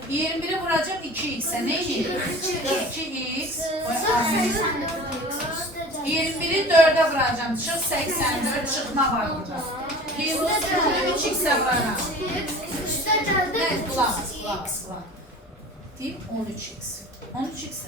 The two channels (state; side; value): normal; both; correlation 0.40